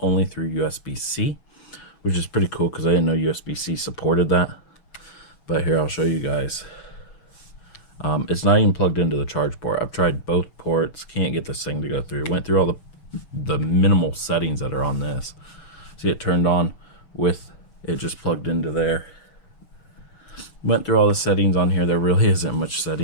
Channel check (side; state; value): right; late; 6.7 ms